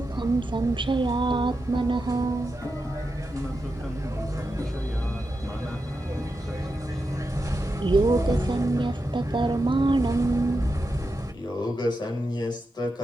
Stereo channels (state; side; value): normal; both; correlation 0.88